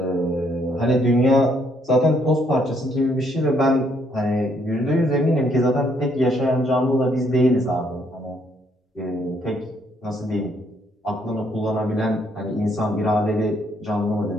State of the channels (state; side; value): normal; both; correlation 0.69